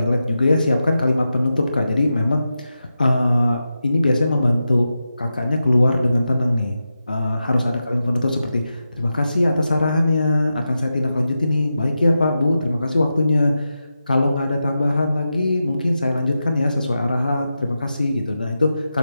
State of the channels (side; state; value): both; inverted; correlation -0.90